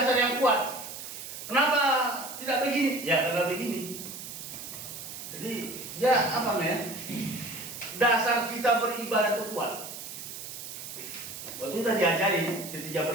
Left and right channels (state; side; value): noise; right; hiss, 10 dB below the sound